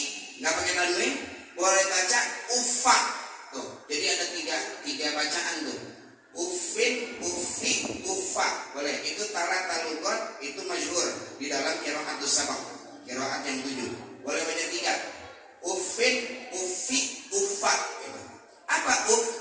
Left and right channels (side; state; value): both; identical; correlation 1.00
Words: nggak pakai tanwin, boleh baca ufa. Tuh, jadi ada tiga bacaan tuh. Ufin, ufi, ufa. Boleh. Itu talat talugot, itu masyhur di dalam qiraatus sabaq, qiraat yang 7. Boleh baca 3. Ufin, ufi, ufa. Apa uf?